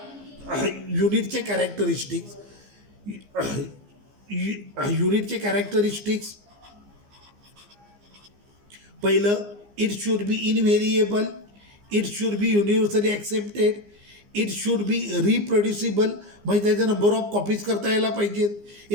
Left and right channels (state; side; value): late; left; 15 ms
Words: युनिटचे कॅरेक्टरिस्टिक्स, युनिटचे कॅरेक्टरिस्टिक्स, पहिलं it should be invariable, it should be universally accepted, it should be reproducible, म्हणजे त्याचा नंबर ऑफ कॉपीज करता यायला पाहिजेत.